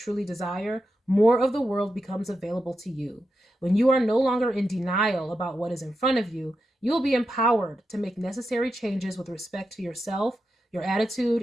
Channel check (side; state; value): both; normal; correlation 0.88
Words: desire, more of the world becomes available to you. When you are no longer in denial about what is in front of you, you will be empowered to make necessary changes with respect to yourself, your